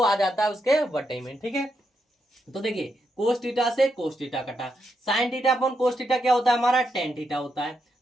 आ जाता है उसके बटे में। ठीक है, तो देखिए कोस थीटा से कोस थीटा कटा, sign theta upon cos theta क्या होता है हमारा टेन थीटा होता है,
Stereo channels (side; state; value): both; normal; correlation 0.81